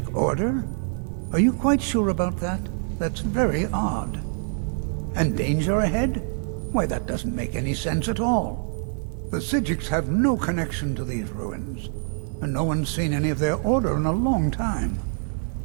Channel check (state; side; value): silent; left; 56 dB below the other